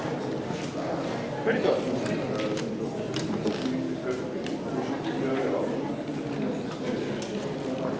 Where'd it go?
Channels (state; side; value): identical; both; correlation 1.00